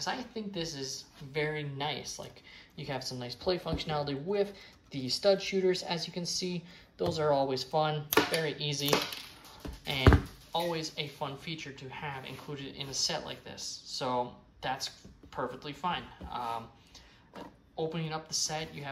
I think this is very nice. Like, you have some nice play functionality with the stud shooters, as you can see. Those are always fun, very easy, and always a fun feature to have included in a set like this. So that's perfectly fine. Opening up the set, you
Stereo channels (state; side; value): identical; both; correlation 1.00